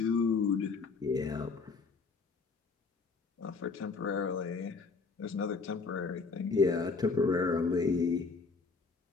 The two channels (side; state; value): right; quieter; 4.5 dB